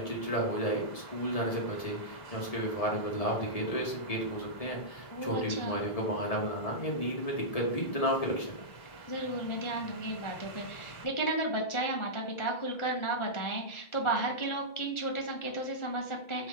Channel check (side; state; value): right; late; 1.7 ms